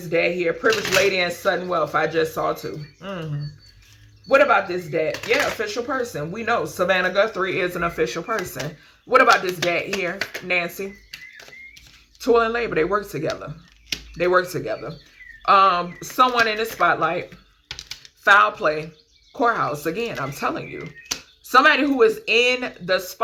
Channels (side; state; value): both; identical; correlation 1.00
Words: dad here? Privileged lady and sudden wealth. I just saw too. What about this dad? Yeah, official person. We know Savannah Guthrie is an official person. What about this dad here? Nancy. Toil and labor. They work together. They work together. Someone in the spotlight. Foul play. Courthouse. Again, I'm telling you. Somebody who is in the